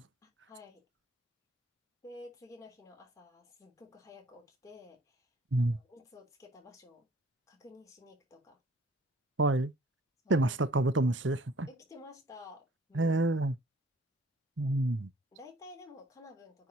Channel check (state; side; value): normal; both; correlation 0.57